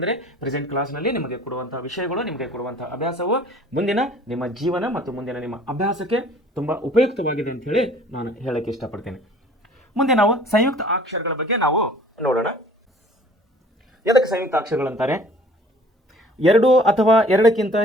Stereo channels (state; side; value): normal; both; correlation 0.51